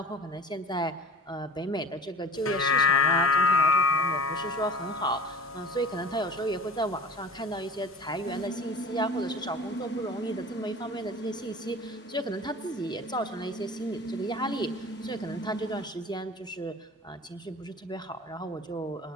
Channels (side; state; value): both; normal; correlation 0.37